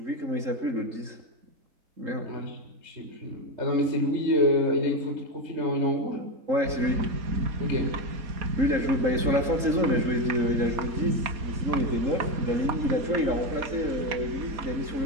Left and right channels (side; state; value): left; late; 3.8 ms